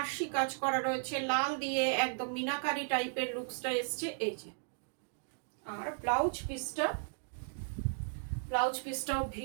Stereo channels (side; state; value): left; silent; digital silence